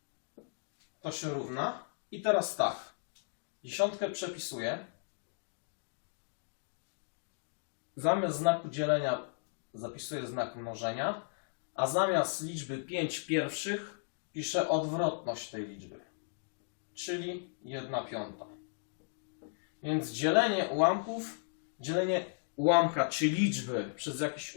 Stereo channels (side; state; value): right; silent; digital silence